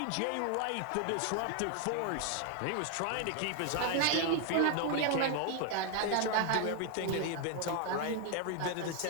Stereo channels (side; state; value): both; different; correlation 0.00